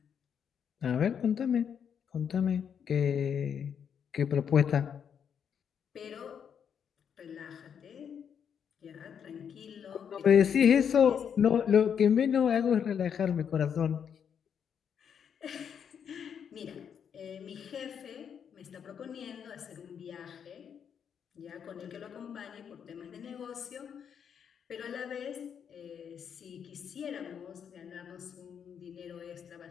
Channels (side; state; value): right; quieter; 7.8 dB